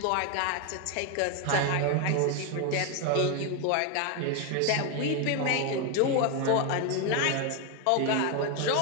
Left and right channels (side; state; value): both; different; correlation 0.01